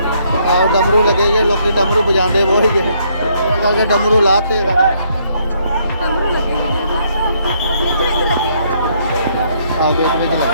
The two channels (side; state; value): both; inverted; correlation -0.70